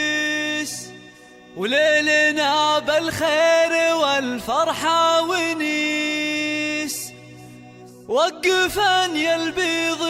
وليلنا بالخير والفرحة ونيس. وقفا يا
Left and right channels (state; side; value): identical; both; correlation 1.00